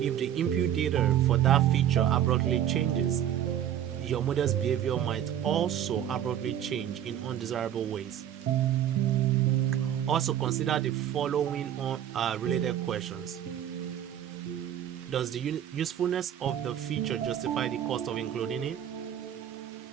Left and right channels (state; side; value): quieter; left; 10.6 dB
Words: the input data for that feature abruptly changes, your model's behavior might also abruptly change in undesirable ways. Also consider the following related questions. Does the usefulness of the feature justify the cost of including it?